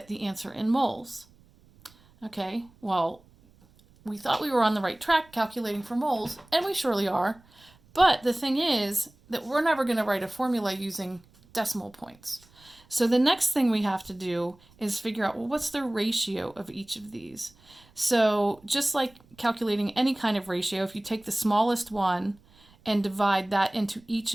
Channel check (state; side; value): noise; right; rumble, 29 dB below the sound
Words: the answer in moles. Okay, well, we thought we were on the right track calculating for moles, and we surely are. But the thing is that we're never going to write a formula using decimal points. So the next thing we have to do is figure out, well, what's the ratio of each of these? So just like calculating any kind of ratio, if you take the smallest one and divide that into each